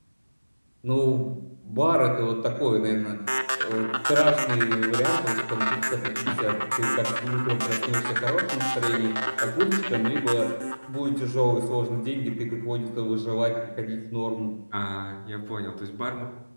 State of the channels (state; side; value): inverted; both; correlation -1.00